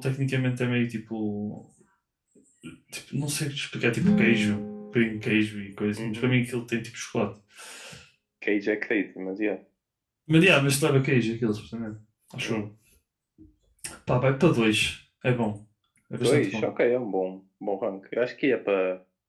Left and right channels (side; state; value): both; identical; correlation 1.00